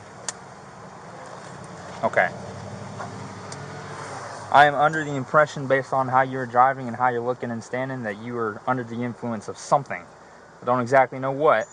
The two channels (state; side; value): identical; both; correlation 1.00